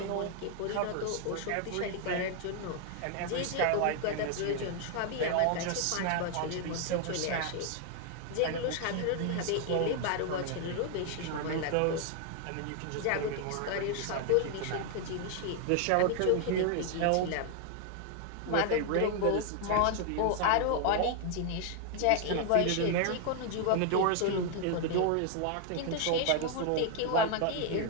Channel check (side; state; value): both; different; correlation 0.00